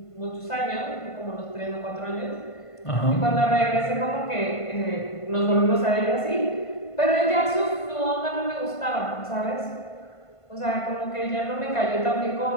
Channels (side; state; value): right; late; 1.5 ms